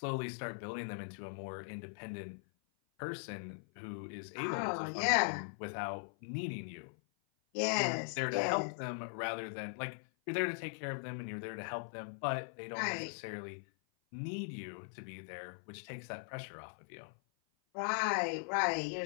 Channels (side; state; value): right; silent; 51 dB below the other